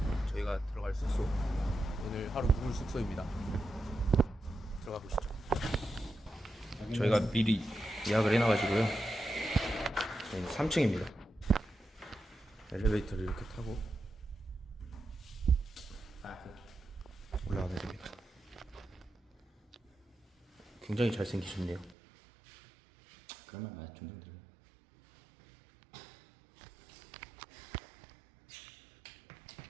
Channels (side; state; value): left; drops out; at 22.0 s